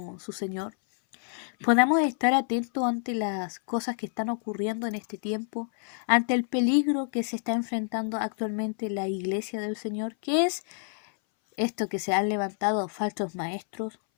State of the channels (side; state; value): right; silent; 59 dB below the other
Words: su Señor, podamos estar atentos ante las cosas que están ocurriendo en este tiempo, ante el peligro que se está enfrentando actualmente la iglesia del Señor, que es esto que se han levantado falsos maestros,